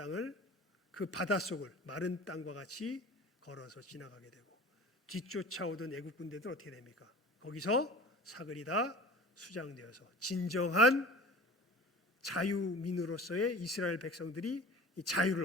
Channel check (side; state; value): both; normal; correlation 0.41